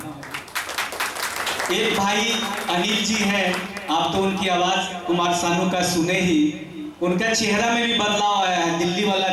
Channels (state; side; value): identical; both; correlation 1.00